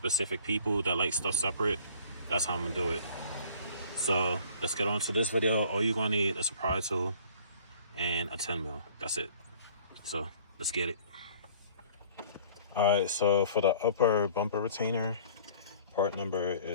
people that like stuff separate, that's how I'm gonna do it. So let's get on to this video. All you're gonna need is a pry tool and a 10 mil. That's it. So let's get it. All right, so for the upper bumper retainer, part number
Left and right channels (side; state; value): both; inverted; correlation -0.51